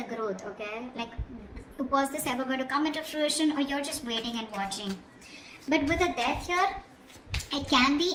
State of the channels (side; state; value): both; identical; correlation 1.00